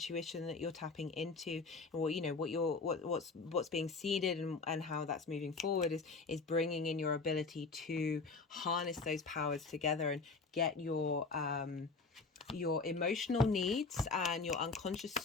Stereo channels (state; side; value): quieter; right; 4.2 dB